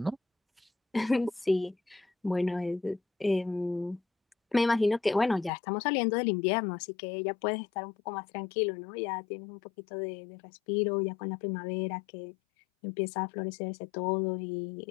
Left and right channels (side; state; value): right; drops out; at 5.5 s